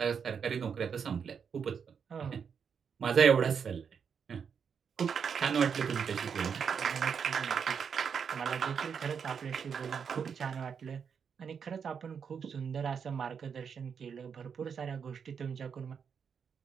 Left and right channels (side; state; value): left; quieter; 6.8 dB